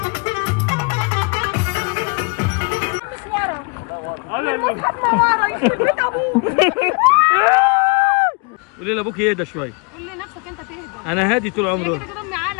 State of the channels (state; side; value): quieter; right; 32.1 dB